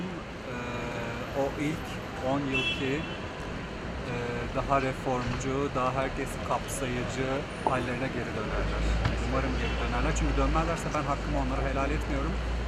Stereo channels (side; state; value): both; identical; correlation 1.00